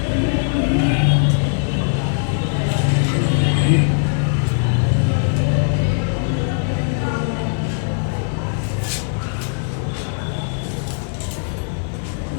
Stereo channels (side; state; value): right; silent; digital silence